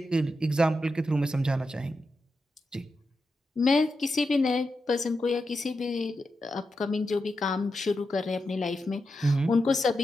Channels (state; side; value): normal; both; correlation 0.88